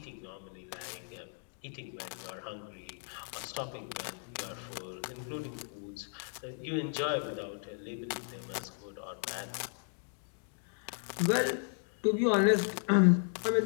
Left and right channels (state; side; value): silent; right; 54 dB below the other